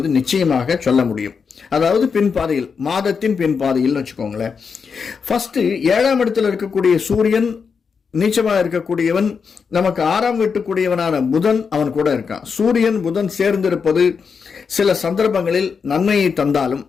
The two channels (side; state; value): right; quieter; 5.8 dB